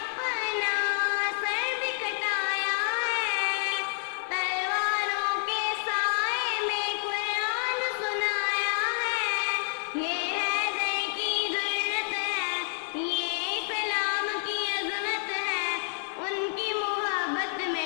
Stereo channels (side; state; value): right; silent; 59 dB below the other